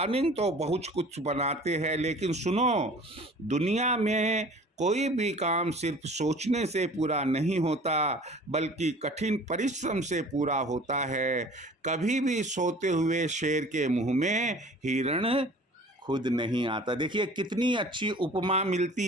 तो बहुत कुछ बनाते हैं, लेकिन सुनो, दुनिया में कोई भी काम सिर्फ सोचने से पूरा नहीं होता, बल्कि कठिन परिश्रम से पूरा होता है। कभी भी सोते हुए शेर के मुंह में हिरण खुद नहीं आता। देखिए कितनी अच्छी उपमा मिलती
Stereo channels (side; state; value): both; normal; correlation 0.46